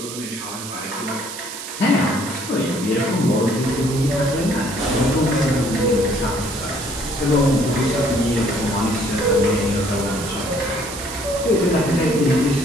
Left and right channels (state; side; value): noise; right; hiss, 10 dB below the sound